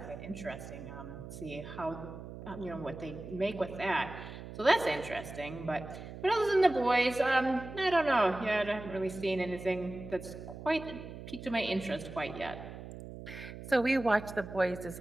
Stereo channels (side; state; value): right; noise; hum, 12 dB below the sound